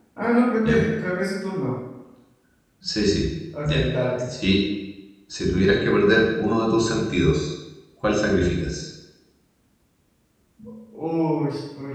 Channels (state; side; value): identical; both; correlation 1.00